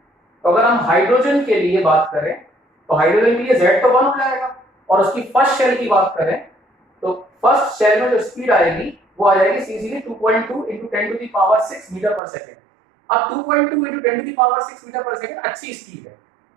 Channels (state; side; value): drops out; left; at 12.2 s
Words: तो अगर हम हाइड्रोजन के लिए बात करें तो हाइड्रोजन के लिए Z तो 1 हो जाएगा, और उसकी फर्स्ट शेल की बात करें तो फर्स्ट शेल में जो स्पीड आएगी वो आ जाएगी सीधे 2.2 into 10 to the power 6 metre पर सेकेंड। अब 2.2 into 10 to the power 6 metre पर सेकेंड अच्छी स्पीड है,